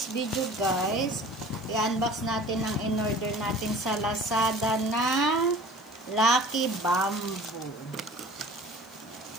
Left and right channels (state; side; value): noise; left; hiss, 29 dB below the sound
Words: video guys, i-unbox natin ang in-order natin sa Lazada na Lucky Bamboo.